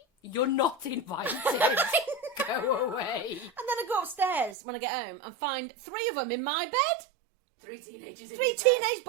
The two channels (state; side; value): drops out; left; at 4.5 s